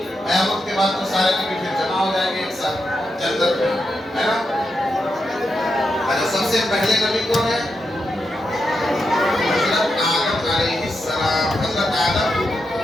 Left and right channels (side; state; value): both; normal; correlation 0.85